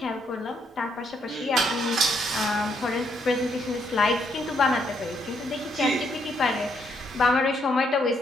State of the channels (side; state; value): both; normal; correlation 0.73